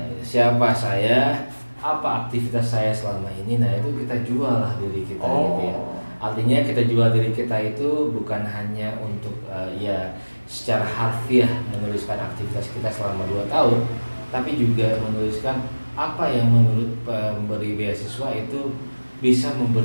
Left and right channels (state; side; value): inverted; both; correlation -1.00